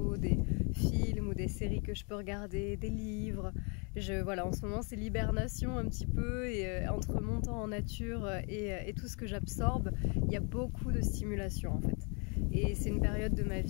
des films ou des séries que je peux regarder, des livres. Voilà, en ce moment c'est l'hibernation un petit peu et entre mon temps en nature et tout ce que j'absorbe, il y a beaucoup de stimulation en fait. Et c'est une période de ma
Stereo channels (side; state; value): right; quieter; 34.9 dB